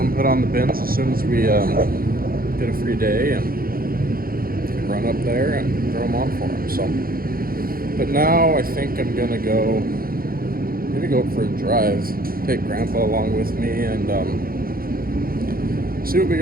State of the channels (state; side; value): late; left; 0.42 ms